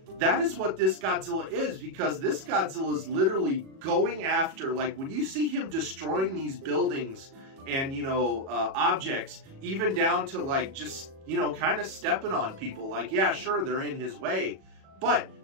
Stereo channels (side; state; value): left; late; 37 ms